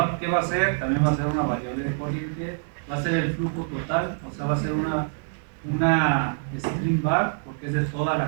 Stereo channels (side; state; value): left; silent; digital silence